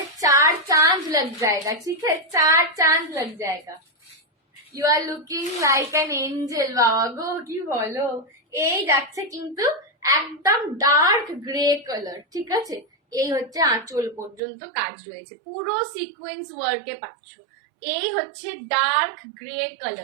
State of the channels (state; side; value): drops out; left; at 14.4 s